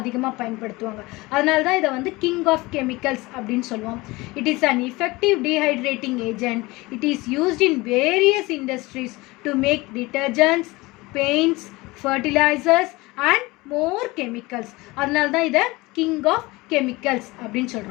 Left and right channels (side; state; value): right; quieter; 22.0 dB